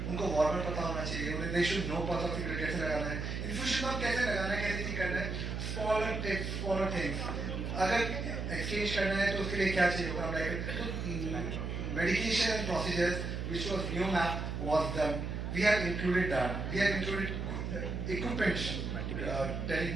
उनको warmer पता होना चाहिए, they should know pulse oximeter कैसे लगाना है, infusion pump कैसे लगाना है, कैसे नहीं करना है, smaller tips, smaller things. अगर exchange करना है तो उसके लिए क्या चाहिए होगा, like medication procedures, which was new map was done. We have included that. We have included equipment,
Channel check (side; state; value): right; noise; hum, 3 dB below the sound